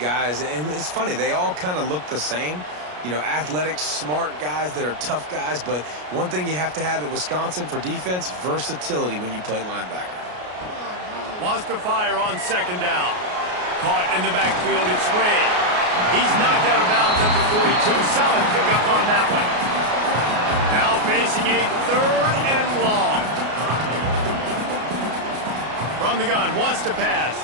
and it's funny, they all kind of look the same. You know, athletic, smart guys that are tough guys, but one thing you have to have at Wisconsin for defense, versatility when you play linebacker. Wants to fire on second down. Caught in the backfield, it's Red. He's knocked out of bounds at the 42. Solid pickup on that one. Now facing a third and long. From the gun, wants to pass.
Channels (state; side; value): late; left; 33 ms